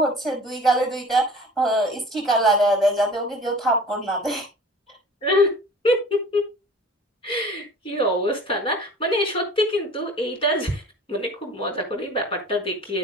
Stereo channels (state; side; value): normal; both; correlation 0.44